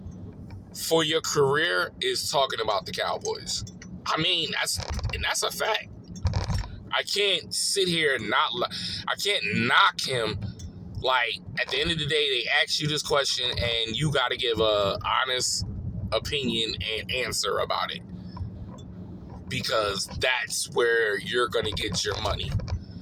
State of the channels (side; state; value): both; identical; correlation 1.00